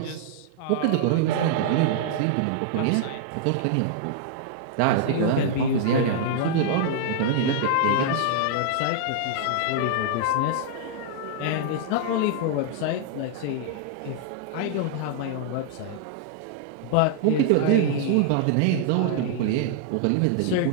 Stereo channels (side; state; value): both; different; correlation -0.01